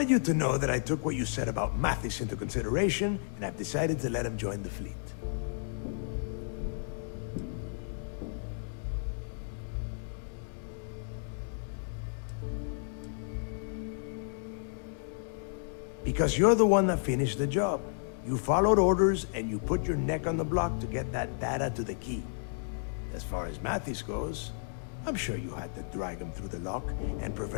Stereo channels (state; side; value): silent; right; digital silence